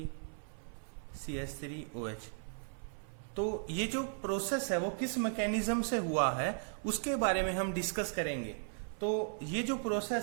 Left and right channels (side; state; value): left; silent; 53 dB below the other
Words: CH3OH। तो ये जो प्रोसेस है वो किस मैकेनिज्म से हुआ है उसके बारे में हम डिस्कस करेंगे। तो ये जो